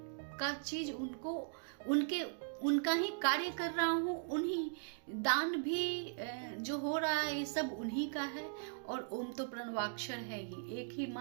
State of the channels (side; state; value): left; silent; digital silence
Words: का चीज उनका ही कार्य कर रहा हूँ, उन्हीं दान भी जो हो रहा है ये सब उन्हीं का है। और ओम तो प्रणवाक्षर है ही, एक ही